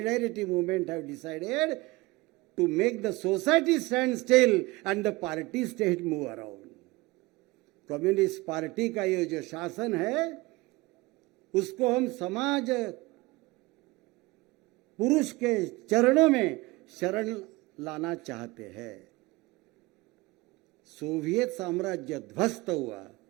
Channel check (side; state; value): left; quieter; 22.0 dB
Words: movement, have decided to make the society stand still and the party state move around. Communist party का ये जो शासन है, उसको हम समाज पुरुष के चरणों में शरण लाना चाहते हैं. सोवियत साम्राज्य ध्वस्त हुआ,